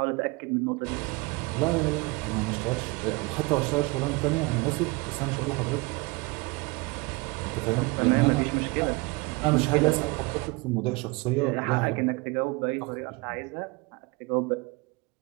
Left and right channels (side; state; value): left; quieter; 25.6 dB